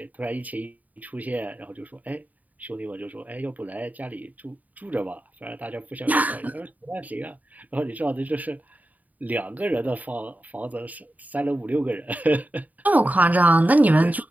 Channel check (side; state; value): left; late; 0.076 ms